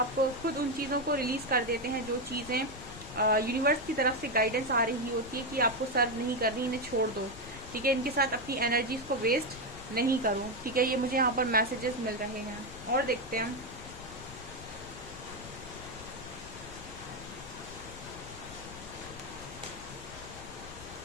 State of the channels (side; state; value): left; noise; rumble, 15 dB below the sound